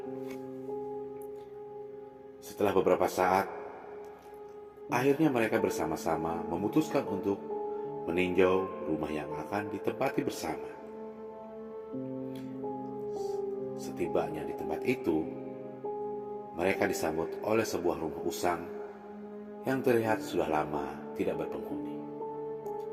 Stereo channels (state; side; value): identical; both; correlation 1.00